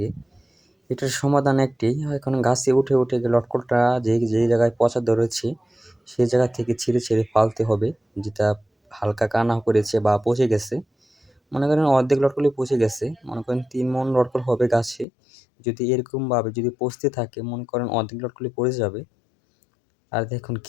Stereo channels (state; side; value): drops out; right; at 15.1 s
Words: এটার সমাধান একটি, এখন গাছে উঠে উঠে লটকলটা যে জায়গায় পচা ধরেছে সেই জায়গা থেকে ছিঁড়ে ছিঁড়ে ফালতে হবে, যেটা হালকা কানা করেছে বা পচে গেছে। মনে করেন অর্ধেক লটকলই পচে গেছে, মনে করেন 3 মণ লটকল হবে গাছে। যদি এরকমভাবে যদি পচতে থাকে, মনে করেন অর্ধেক লটকলই পড়ে যাবে। আর দেখুন